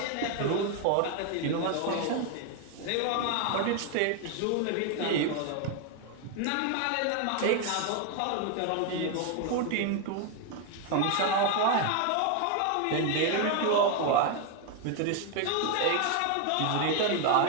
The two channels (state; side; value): different; both; correlation 0.01